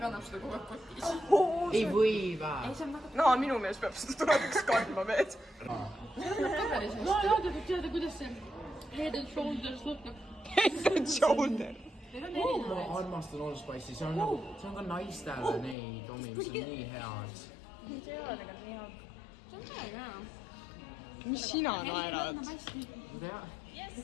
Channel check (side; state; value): right; drops out; at 15.8 s